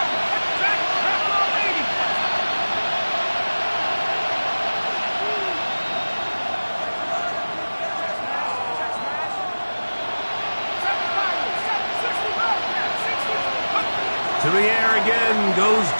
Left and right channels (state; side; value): inverted; both; correlation -1.00